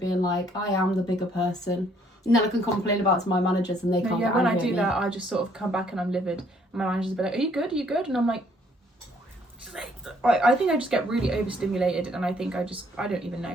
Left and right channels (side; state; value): both; normal; correlation 0.65